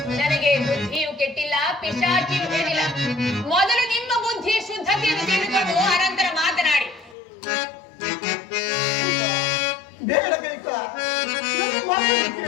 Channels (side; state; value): right; drops out; at 7.2 s